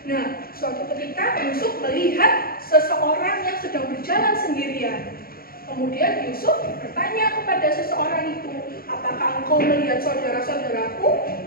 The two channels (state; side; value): late; right; 0.43 ms